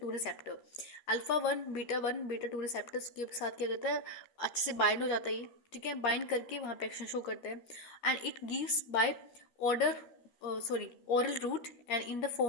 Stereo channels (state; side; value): late; right; 12 ms